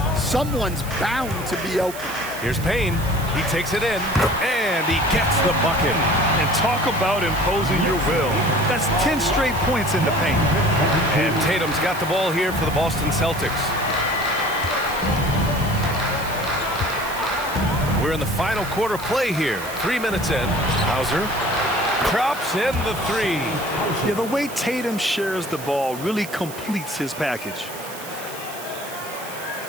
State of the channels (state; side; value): noise; right; hiss, 14 dB below the sound